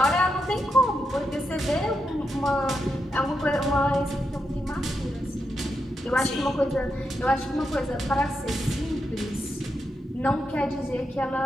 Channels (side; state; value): both; normal; correlation 0.84